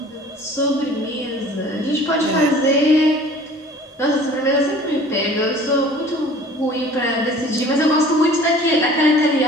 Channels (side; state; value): both; normal; correlation 0.47